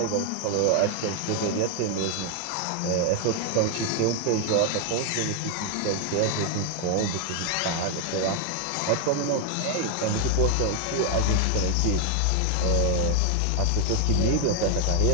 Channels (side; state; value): both; different; correlation 0.00